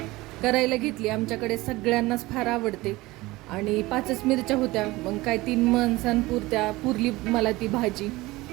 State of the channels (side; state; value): left; quieter; 20.1 dB